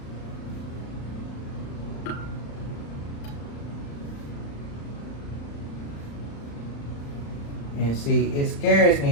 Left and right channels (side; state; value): right; late; 35 ms